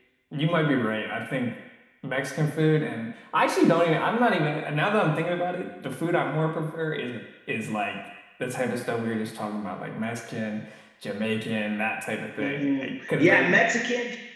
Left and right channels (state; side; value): identical; both; correlation 1.00